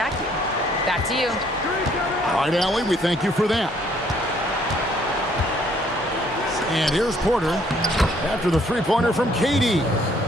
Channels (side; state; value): both; normal; correlation 0.64